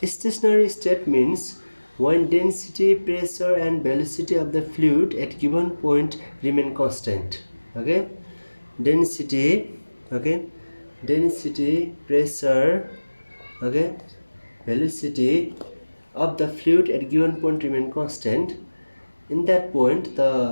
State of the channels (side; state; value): both; inverted; correlation -1.00